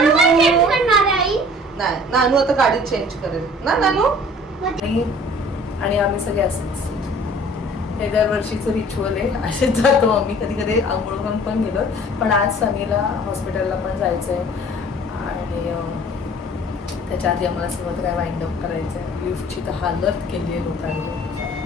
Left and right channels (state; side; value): normal; both; correlation 0.50